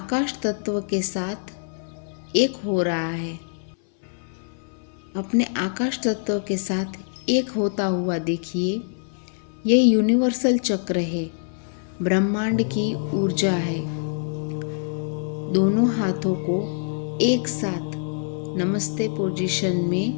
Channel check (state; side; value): silent; right; 60 dB below the other